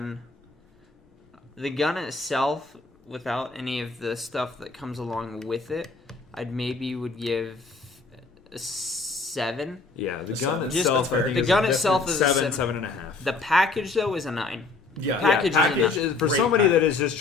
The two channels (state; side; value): quieter; right; 3.9 dB